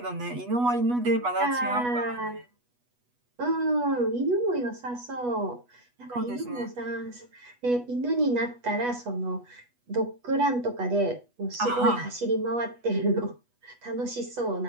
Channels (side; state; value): left; late; 8.2 ms